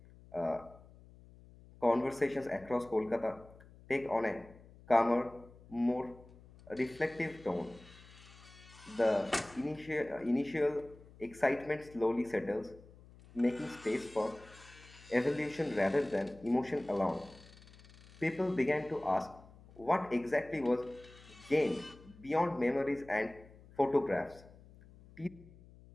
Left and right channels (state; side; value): noise; left; hum, 22 dB below the sound